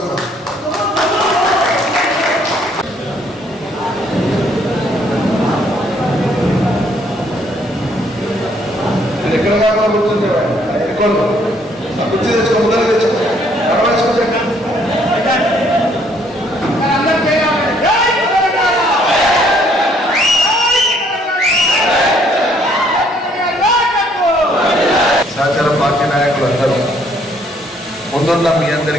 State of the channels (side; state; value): both; normal; correlation 0.65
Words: ఎక్కడ కాకుండా కూర్చుంటే కుర్చీ తెచ్చుకో, ముందర తెచ్చుకో, సహచర పార్టీ నాయకులు అందరూ ముందున్న మీ